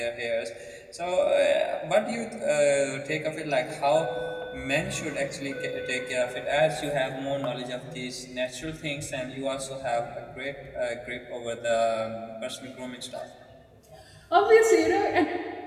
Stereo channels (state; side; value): identical; both; correlation 1.00